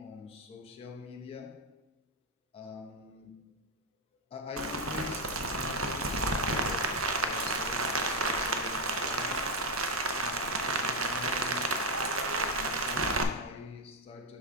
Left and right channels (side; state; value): both; normal; correlation 0.05